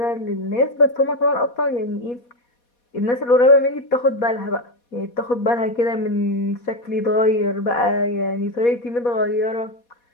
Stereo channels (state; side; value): late; right; 4.2 ms